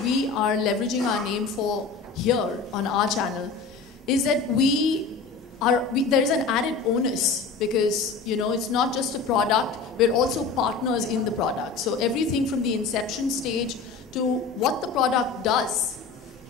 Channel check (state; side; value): quieter; right; 4.7 dB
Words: we are leveraging our name for here on our channel is that there is an added onus, because it's not just a product, we're also partners in the product. So everything from the inception stage to what the product does